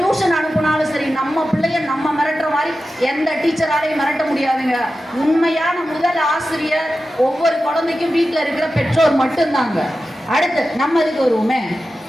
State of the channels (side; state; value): both; normal; correlation 0.93